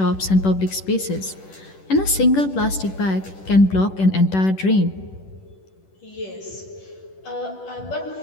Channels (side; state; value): right; late; 10 ms